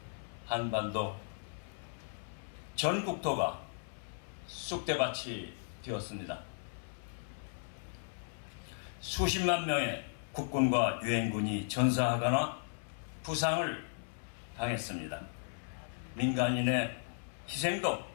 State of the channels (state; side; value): silent; right; 54 dB below the other